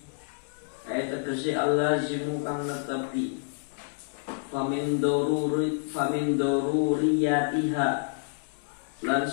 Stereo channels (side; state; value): right; silent; digital silence